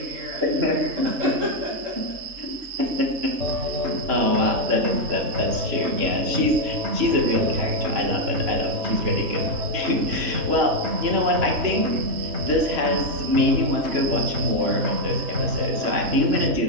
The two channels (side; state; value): left; late; 3.0 ms